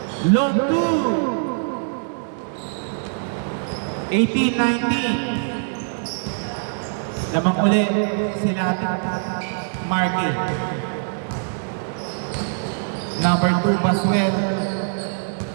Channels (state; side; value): silent; left; 64 dB below the other